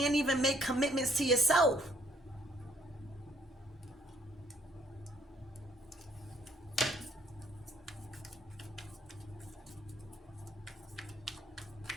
even make commitments to yourself.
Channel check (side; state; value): both; normal; correlation 0.65